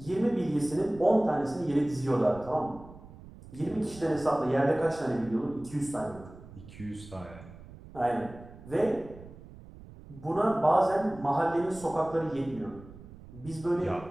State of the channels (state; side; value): noise; right; rumble, 18 dB below the sound